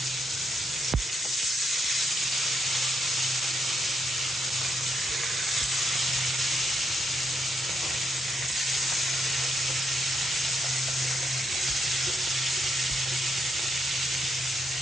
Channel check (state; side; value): normal; both; correlation 0.78